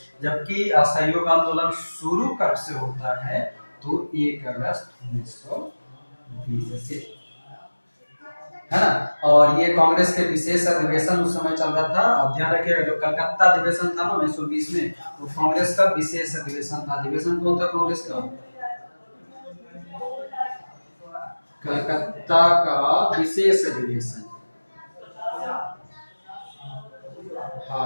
जबकि असहयोग आंदोलन शुरू कब से होता है? तो 1 अगस्त 1920 से, है ना। और ये कांग्रेस के विशेष अधिवेशन उस समय चल रहा था। अब ध्यान रखिएगा, जो कलकत्ता अधिवेशन था ना 1920 में, वो कांग्रेस का विशेष अधिवेशन था। अधिवेशन कौन था कांग्रेस का? कलकत्ता का विशेष अधिवेशन।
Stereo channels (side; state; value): both; inverted; correlation -1.00